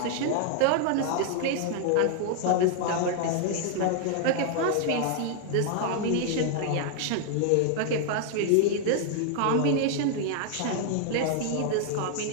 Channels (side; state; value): both; different; correlation 0.00